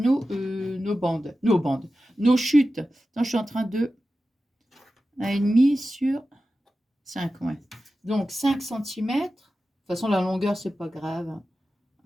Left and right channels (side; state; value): both; normal; correlation 0.94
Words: bandes, nos chutes. Attends, je suis en train de 1,5 sur 5, ouais. Donc, 5 cm. De toute façon, la longueur, c'est pas grave.